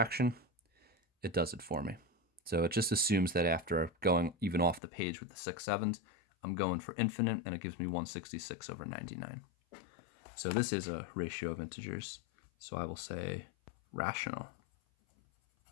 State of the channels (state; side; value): drops out; right; at 4.8 s